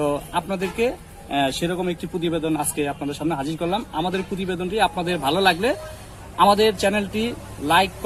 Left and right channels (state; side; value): identical; both; correlation 1.00